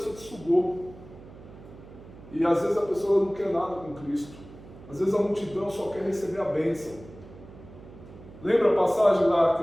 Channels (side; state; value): right; noise; hum, 18 dB below the sound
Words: te sugou. E às vezes a pessoa não quer nada com Cristo. Às vezes a multidão só quer receber a bênção. Lembra a passagem lá que